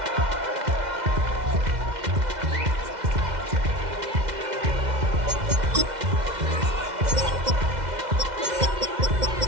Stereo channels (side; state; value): left; late; 2.1 ms